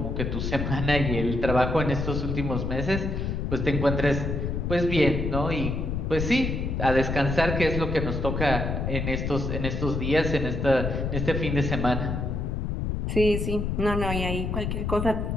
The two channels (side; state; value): left; noise; rumble, 2 dB below the sound